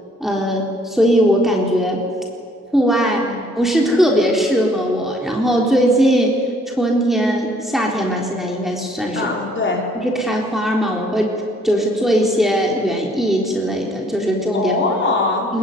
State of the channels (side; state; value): both; normal; correlation 0.61